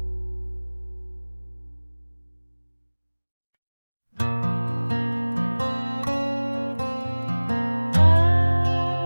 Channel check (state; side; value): inverted; both; correlation -1.00